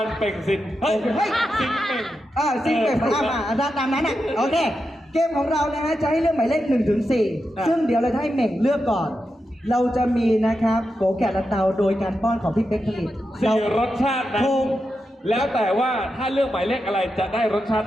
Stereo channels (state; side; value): normal; both; correlation 0.88